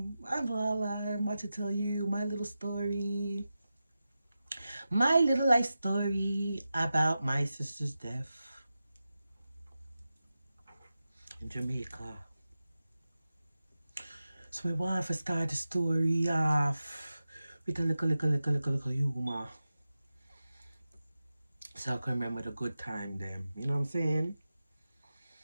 Lala. I'm about to tell you my little story. My little life story about my sister's death in Jamaica. So I want to start the story off with a little humor. So I can remember the good time them. You know what I'm saying?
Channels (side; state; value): both; inverted; correlation -0.93